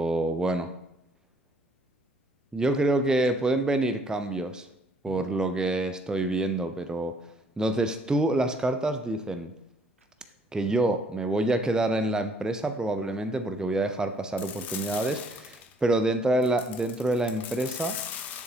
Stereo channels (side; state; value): both; normal; correlation 0.63